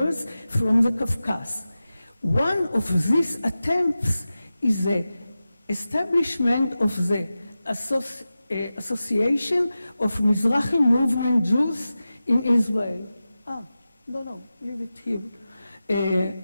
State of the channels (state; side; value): inverted; both; correlation -0.94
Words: from the Caucasus. One of these attempts is the establishment of the Association of Mizrahi Movement Jews in Israel. No, leave it here.